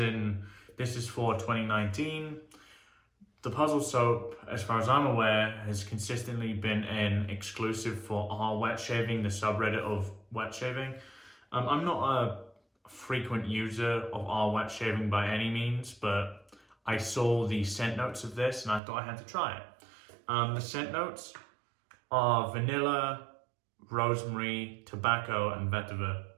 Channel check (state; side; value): drops out; left; at 18.8 s